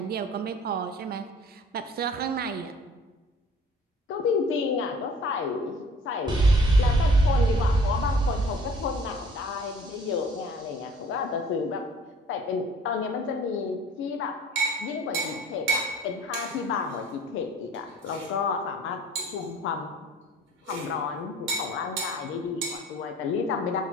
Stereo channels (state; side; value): normal; both; correlation 0.50